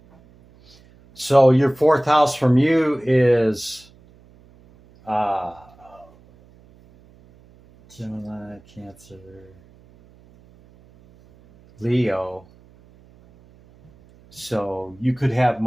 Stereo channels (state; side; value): noise; right; hum, 28 dB below the sound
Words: So your fourth house from you is Gemini, Cancer, Leo. So you could have